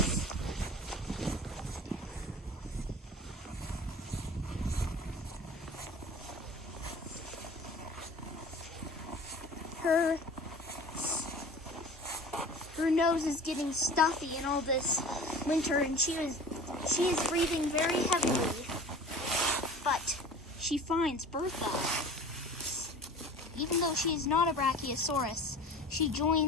Her nose is getting stuffy in all this winter, and she is breathing very heavily. But she finds Bertha. Even though she is not a Brachiosaurus, she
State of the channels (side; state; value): both; normal; correlation 0.40